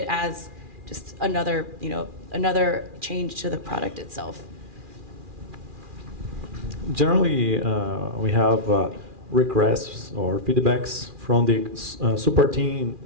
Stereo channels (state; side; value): late; left; 2.4 ms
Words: as just another change to the product itself. Generally, we have requests or feedbacks from the support team,